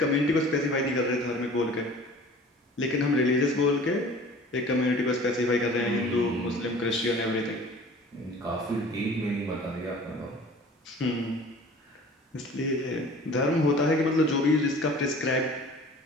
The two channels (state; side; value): normal; both; correlation 0.45